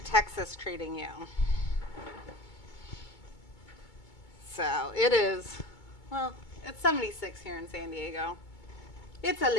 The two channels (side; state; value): right; late; 2.2 ms